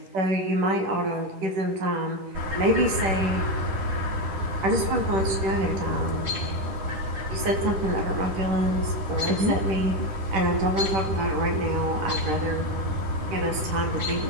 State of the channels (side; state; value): left; late; 10 ms